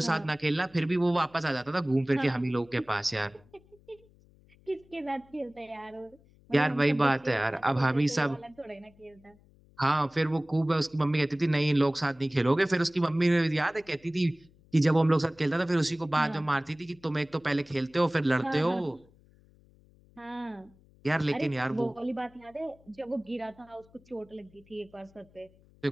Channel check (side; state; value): left; noise; hum, 28 dB below the sound